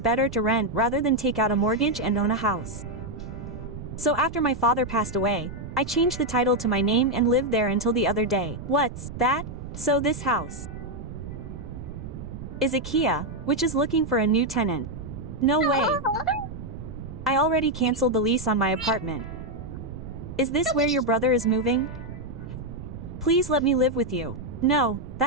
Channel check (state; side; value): noise; right; rumble, 10 dB below the sound